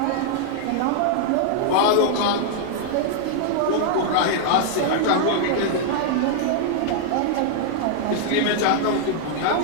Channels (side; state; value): both; different; correlation -0.01